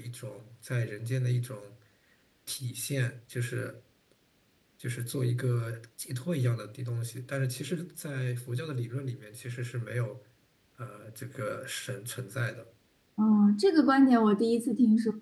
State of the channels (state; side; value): identical; both; correlation 1.00